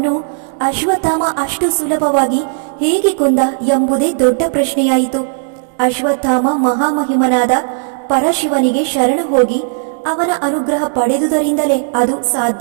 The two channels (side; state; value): left; silent; digital silence